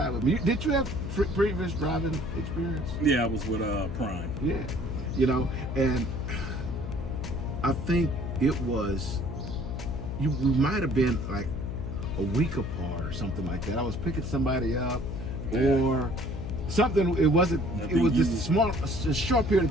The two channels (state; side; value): noise; left; hum, 5 dB below the sound